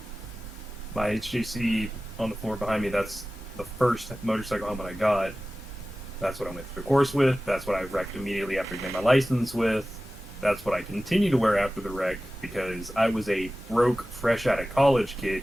My HGC on the floor behind me, that's the first motorcycle helmet I got. That's what I went through the course with. That's what I wrecked immediately after getting my license with. That's what I continue to wear after the wreck because I was a broke, fresh out of college kid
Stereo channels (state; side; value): normal; both; correlation 0.96